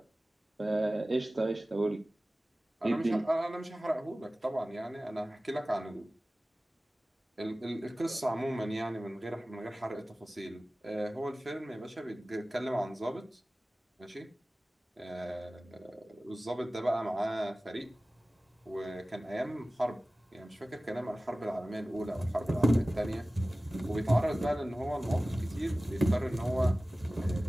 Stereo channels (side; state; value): both; normal; correlation 0.97